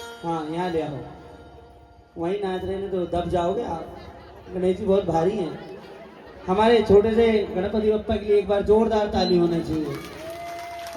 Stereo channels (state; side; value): identical; both; correlation 1.00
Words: हाँ यहाँ ले आओ, वहीं नाच रहे हैं तो दब जाओगे आप। गणेश जी बहुत भारी हैं। हमारे छोटे से गणपति बप्पा के लिए एक बार जोरदार ताली होनी चाहिए।